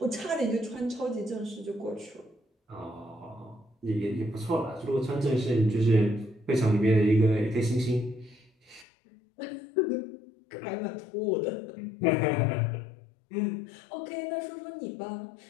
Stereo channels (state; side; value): drops out; right; at 8.8 s